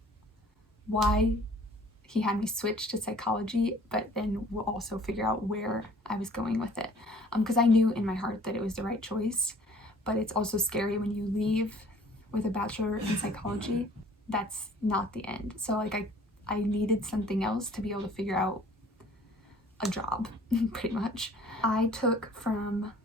why he had me switch to psychology, but then we'll also figure out where I was going with it. Because I knew in my heart that it was the right choice, but it's also scary when you leave with a bachelor in psychology. That's not the end. So like I needed something else to be able to figure out a job, pretty much. I took from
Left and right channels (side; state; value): both; normal; correlation 0.53